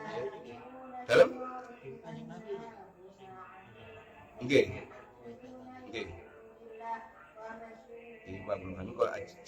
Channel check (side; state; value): both; identical; correlation 1.00